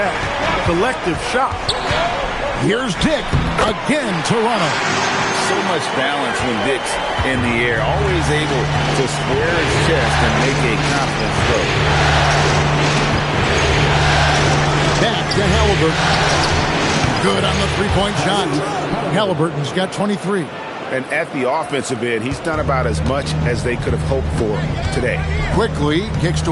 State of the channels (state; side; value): identical; both; correlation 1.00